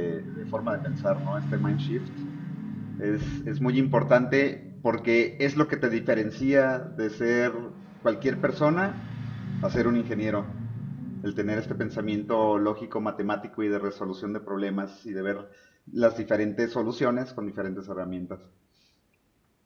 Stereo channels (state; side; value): identical; both; correlation 1.00